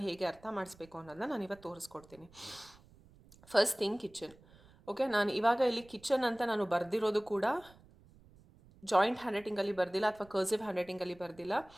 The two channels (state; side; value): noise; right; rumble, 25 dB below the sound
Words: ಹೇಗೆ ಅರ್ಥ ಮಾಡಿಸ್ಬೇಕು ಅನ್ನೋದನ್ನ ನಾನು ಇವತ್ತು ತೋರಿಸ್ಕೊಡ್ತೀನಿ. First thing kitchen. ಓಕೆ, ನಾನು ಇವಾಗ ಇಲ್ಲಿ ಕಿಚನ್ ಅಂತ ನಾನು ಬರೆದಿರೋದು ಕೂಡ ಜಾಯಿಂಟ್ ಹ್ಯಾಂಡ್ ರೈಟಿಂಗಲ್ಲಿ ಬರೆದಿಲ್ಲ ಅಥವಾ ಕರ್ಸಿವ್ ಹ್ಯಾಂಡ್ ರೈಟಿಂಗಲ್ಲಿ ಬರೆದಿಲ್ಲ,